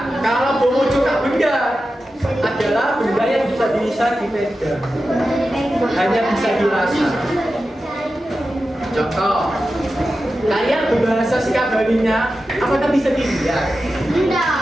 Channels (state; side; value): normal; both; correlation 0.92